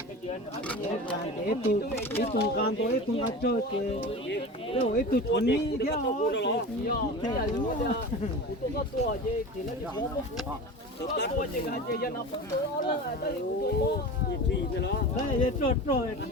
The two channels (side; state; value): both; normal; correlation 0.32